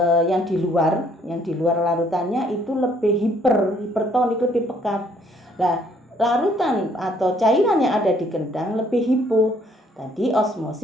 yang di luar larutannya itu lebih hipertonik, lebih pekat. Nah, larutan atau cairan yang ada di kendang lebih hipo. Tadi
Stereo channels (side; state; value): both; normal; correlation 0.64